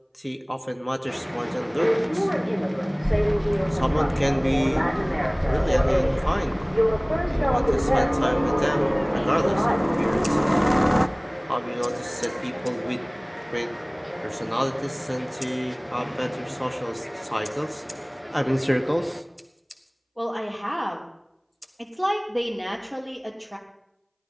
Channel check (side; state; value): both; identical; correlation 1.00